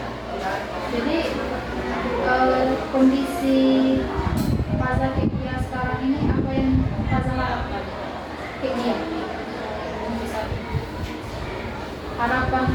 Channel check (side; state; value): both; identical; correlation 1.00